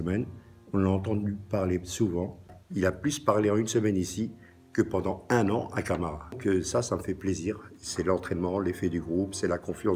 on l'a entendu parler souvent. Il a plus parlé en une semaine ici que pendant 1 an à Camara. Que ça me fait plaisir. C'est l'entraînement, l'effet du groupe, c'est la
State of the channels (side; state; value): both; identical; correlation 1.00